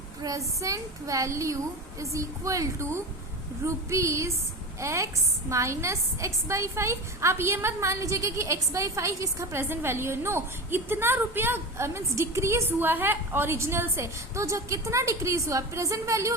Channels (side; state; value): both; normal; correlation 0.27